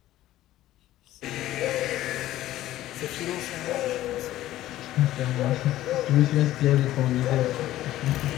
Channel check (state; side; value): quieter; right; 14.5 dB